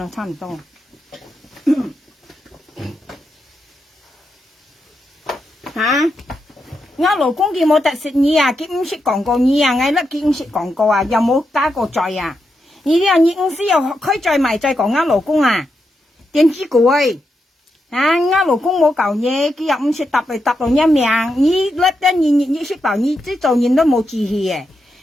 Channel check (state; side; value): normal; both; correlation 0.85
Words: 差唔多。吓，我老公佢冇特食你啊，佢唔識講過你啊，我甩佢唔識講過啊，又冇加過罪啊。你啲人你唔需要開罪埋再講我老公啊，點知佢？啊！我老公冇舊嘢，佢又唔識答嚟答到一命。你甩得你識答，你即做人都冇志氣嘅。